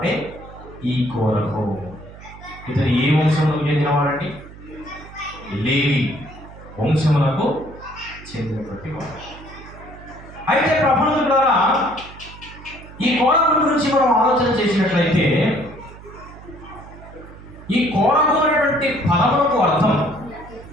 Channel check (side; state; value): right; noise; hum, 18 dB below the sound